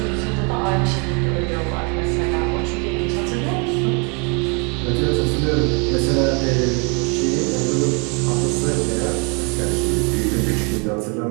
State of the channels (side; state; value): left; quieter; 34.2 dB